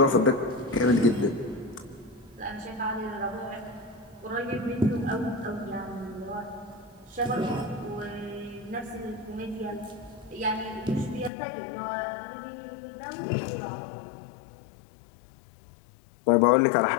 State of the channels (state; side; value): drops out; right; at 11.3 s